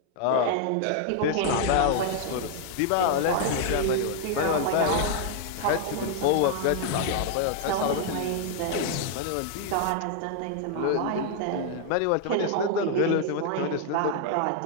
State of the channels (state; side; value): different; both; correlation 0.00